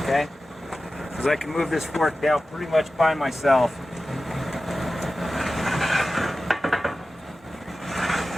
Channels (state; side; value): normal; both; correlation 0.94